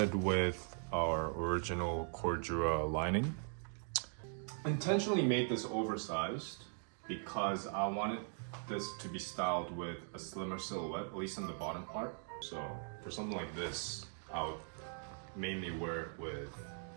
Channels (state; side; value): silent; left; 51 dB below the other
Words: with our original Cordura lining. Intentionally made this oversized because I wanted this to be styled with a slimmer silhouette, at least in the bottom part. So for something like this, I would mainly wear it with